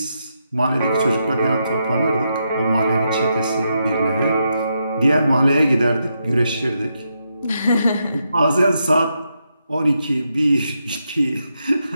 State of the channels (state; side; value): inverted; both; correlation -0.83